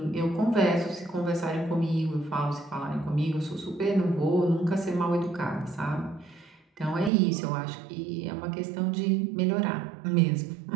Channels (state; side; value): drops out; left; at 7.1 s